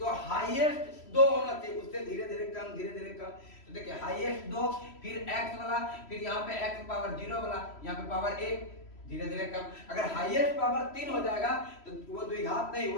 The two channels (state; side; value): late; right; 3.1 ms